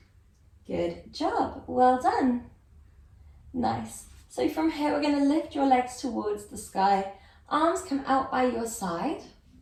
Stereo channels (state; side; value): identical; both; correlation 1.00